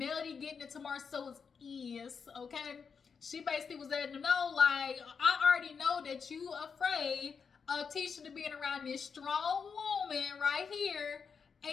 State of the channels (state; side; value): quieter; right; 5.9 dB